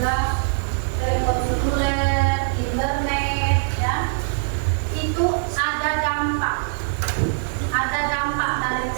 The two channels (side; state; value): left; silent; 64 dB below the other